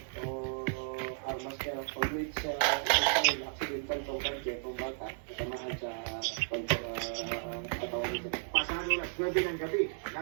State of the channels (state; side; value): silent; left; digital silence